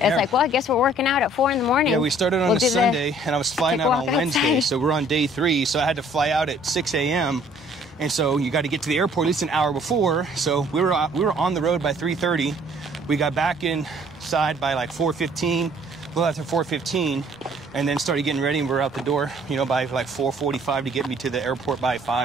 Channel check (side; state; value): both; normal; correlation 0.58